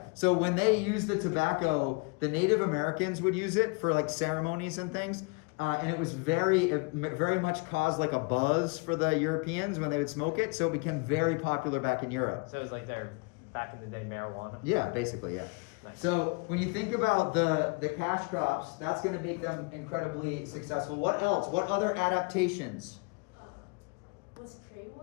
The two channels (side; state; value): right; quieter; 31.1 dB